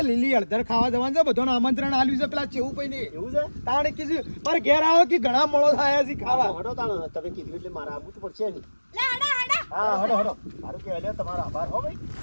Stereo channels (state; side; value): inverted; both; correlation -1.00